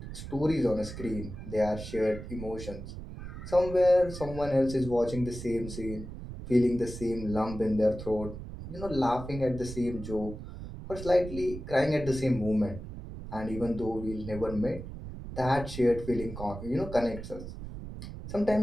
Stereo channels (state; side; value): noise; right; rumble, 10 dB below the sound